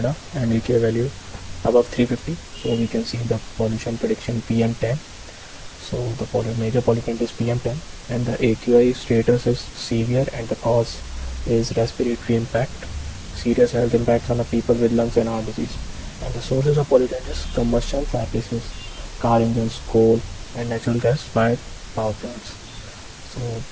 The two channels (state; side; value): identical; both; correlation 1.00